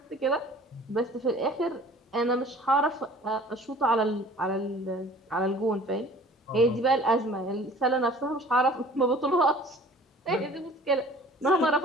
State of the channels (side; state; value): both; normal; correlation 0.48